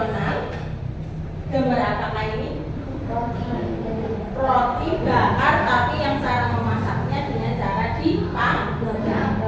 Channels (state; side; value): identical; both; correlation 1.00